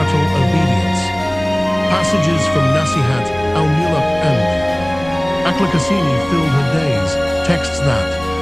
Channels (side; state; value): left; noise; rumble, 18 dB below the sound